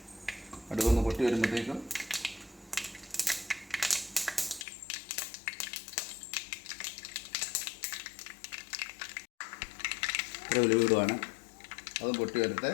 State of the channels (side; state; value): right; drops out; at 4.7 s